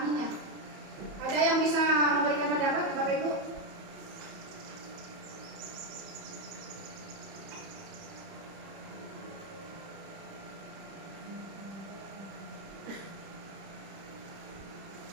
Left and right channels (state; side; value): late; left; 31 ms